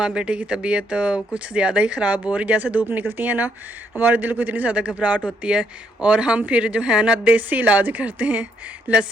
बेटे की तबीयत कुछ ज़्यादा ही ख़राब हो रही। जैसे धूप निकलती है ना, हमारे दिल को इतनी ज़्यादा घबराहट होती है और हम फिर जो है ना देसी इलाज करते हैं,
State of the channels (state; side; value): normal; both; correlation 0.72